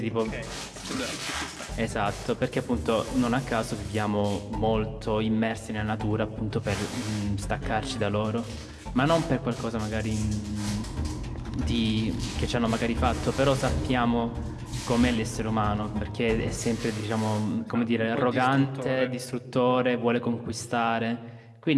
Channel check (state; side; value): identical; both; correlation 1.00